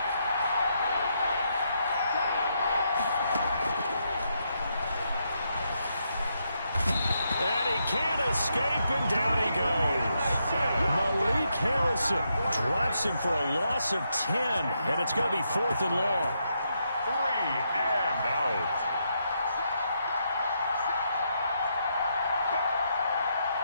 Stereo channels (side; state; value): both; inverted; correlation -0.80